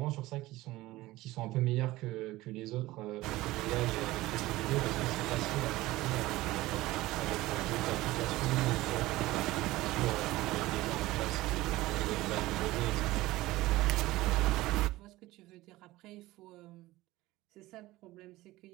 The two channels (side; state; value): left; quieter; 18.1 dB